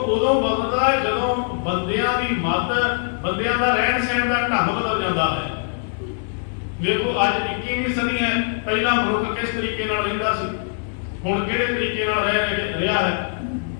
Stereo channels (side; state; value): right; silent; 64 dB below the other